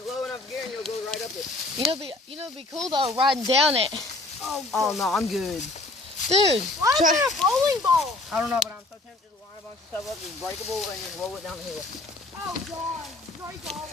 a low enough gear and you'll go right up it. It'd be cool though, riding down it. Oh, no, I'm good. Dude, why is there a bowling ball? I don't know, but I'm so tempted to line a bunch of stuff up that's breakable and just roll it down the hill. Oh, God. Break all of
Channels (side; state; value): right; quieter; 3.0 dB